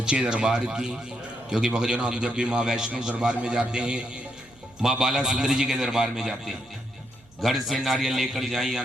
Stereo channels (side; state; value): right; noise; hum, 28 dB below the sound